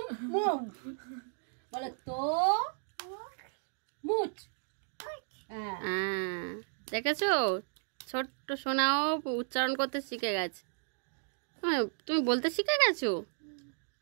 বলো তরমুজ। দেখেছো ছোট্ট সোনাও উচ্চারণ করতে শিখে গেছে। তুমি বলতে শিখে গেছো,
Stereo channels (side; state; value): left; silent; digital silence